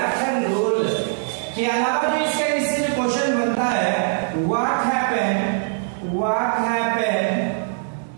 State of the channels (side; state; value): left; silent; digital silence